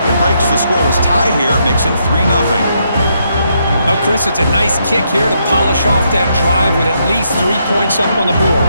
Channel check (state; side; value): inverted; both; correlation -0.77